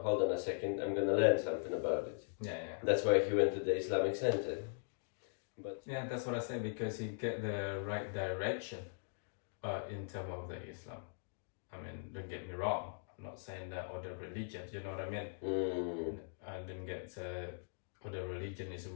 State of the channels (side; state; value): right; silent; digital silence